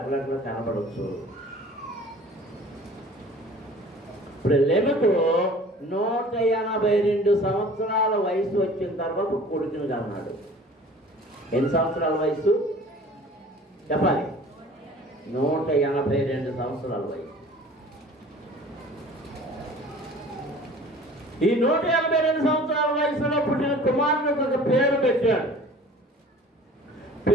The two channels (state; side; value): normal; both; correlation 0.46